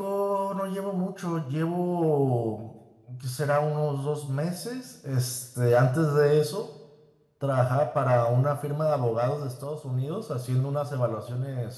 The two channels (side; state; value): both; identical; correlation 1.00